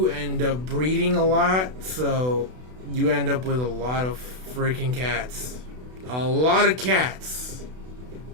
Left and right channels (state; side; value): late; left; 32 ms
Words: end up breeding a lot, so you end up with a lot of freaking cats. A lot of cats.